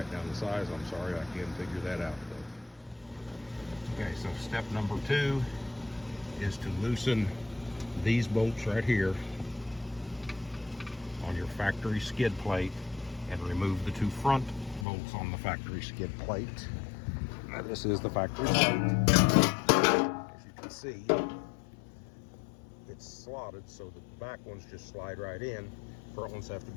down the size. I'm sorry, I can't figure that out though. Okay, so step number 2 is to loosen these bolts right here on your factory skid plate and remove the 2 front bolts on the factory skid plate. Now this is the factory plate. As you can see, it's slotted so the back ones just slide right in. Front ones have to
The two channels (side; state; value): right; drops out; at 14.9 s